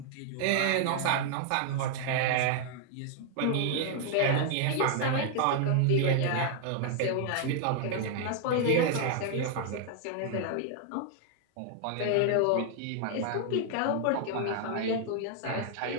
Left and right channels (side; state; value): both; different; correlation 0.00